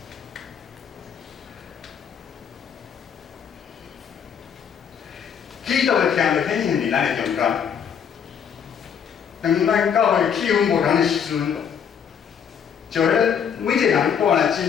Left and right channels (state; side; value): quieter; right; 7.6 dB